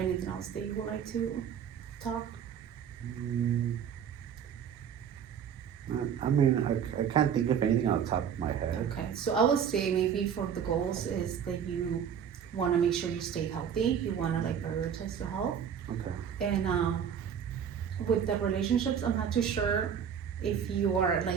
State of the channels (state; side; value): quieter; left; 8.0 dB